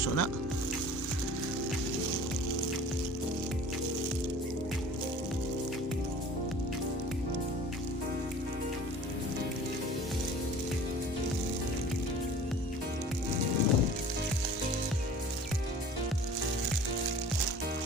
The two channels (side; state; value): both; normal; correlation 0.44